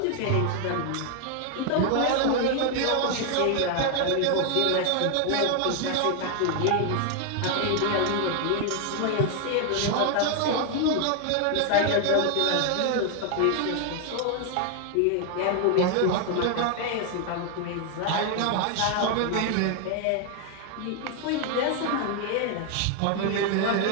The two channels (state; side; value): different; both; correlation 0.01